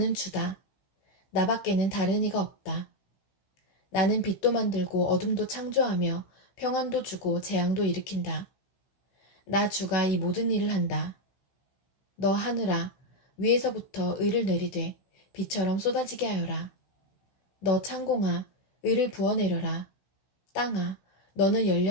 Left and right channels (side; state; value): right; late; 16 ms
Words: 주다. 나밖에는 다른 이가 없다. 나는 빛도 만들고 어둠도 창조하며 평안도 주고 재앙도 일으킨다. 나 주가 이 모든 일을 한다. 너 하늘아, 위에서부터 의를 내리되 비처럼 쏟아지게 하여라. 너 창공아, 의를 부어내려라. 땅아, 너는